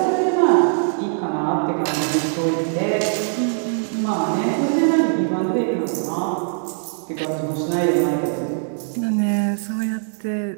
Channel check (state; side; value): silent; left; digital silence